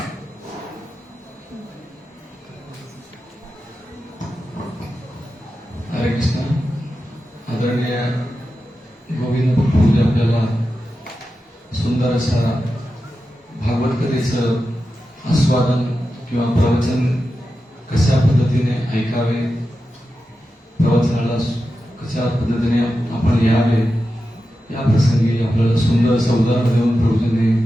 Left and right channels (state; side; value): normal; both; correlation 0.91